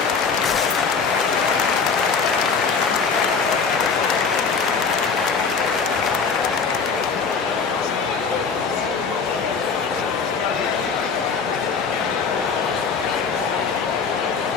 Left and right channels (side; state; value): right; quieter; 5.4 dB